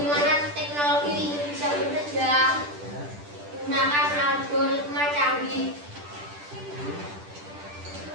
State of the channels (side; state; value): left; late; 10 ms